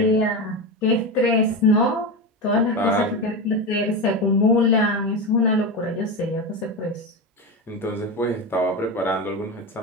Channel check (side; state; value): both; normal; correlation 0.18